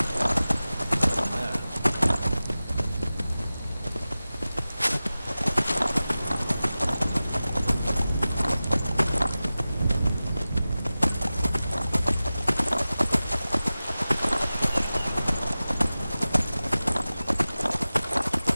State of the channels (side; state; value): both; inverted; correlation -0.96